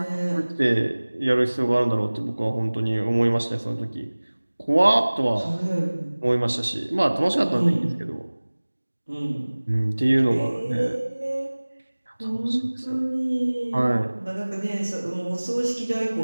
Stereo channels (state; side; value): inverted; both; correlation -1.00